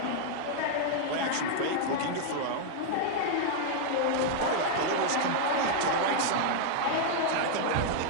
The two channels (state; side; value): different; both; correlation 0.00